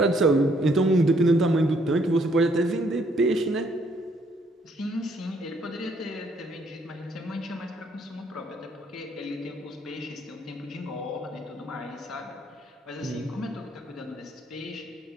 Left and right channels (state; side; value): normal; both; correlation 0.68